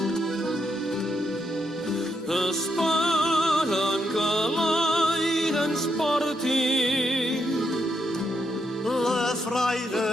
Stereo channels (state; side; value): normal; both; correlation 0.80